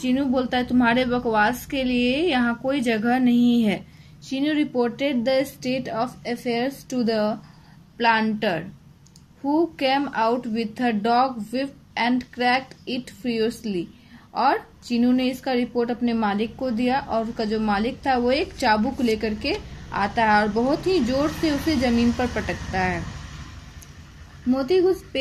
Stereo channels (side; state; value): both; identical; correlation 1.00